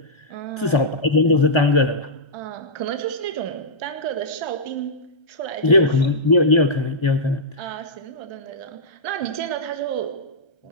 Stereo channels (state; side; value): late; right; 1.3 ms